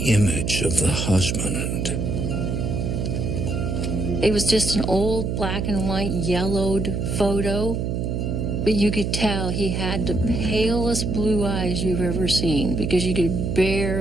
image of the husband. It was just an old black and white yellowed photo, but you could tell he had the palest blue eyes you've ever seen because you could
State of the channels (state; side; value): noise; right; hum, 1 dB below the sound